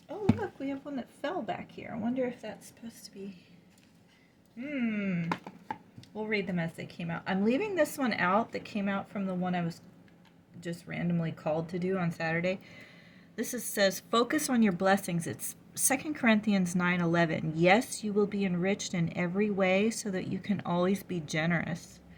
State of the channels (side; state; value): both; identical; correlation 1.00